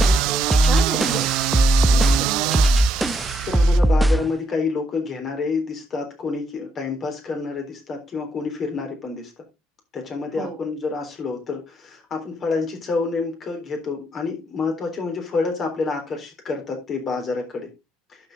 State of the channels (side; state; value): both; normal; correlation 0.75